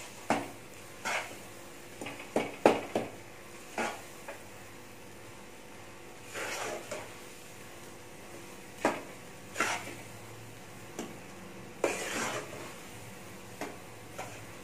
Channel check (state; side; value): identical; both; correlation 1.00